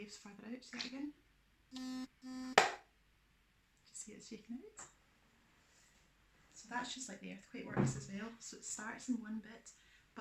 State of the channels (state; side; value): identical; both; correlation 1.00